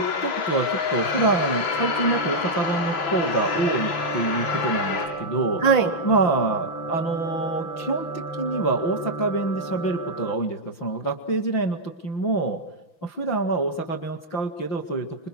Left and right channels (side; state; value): right; late; 6.0 ms